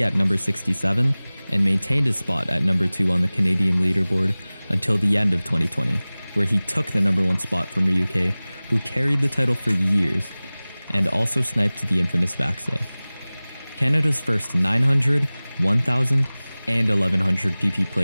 at number 67, and maintained his spot at number 2 on the Canadian leaderboard until the end of 2020, where he took the number 1 spot from RyuK, who carried the title for years, and also sniped the infamous Vaxe. Canada's first 900, 1000, and 1100 PP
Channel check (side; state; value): both; inverted; correlation -0.99